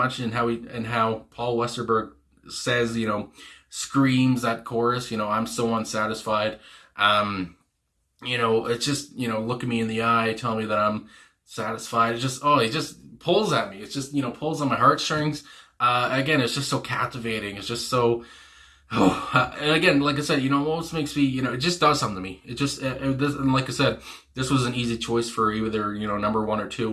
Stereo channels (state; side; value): identical; both; correlation 1.00